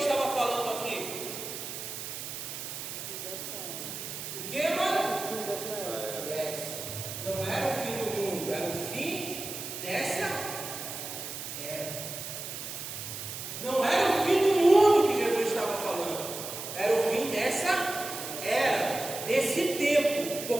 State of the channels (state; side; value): noise; right; hiss, 7 dB below the sound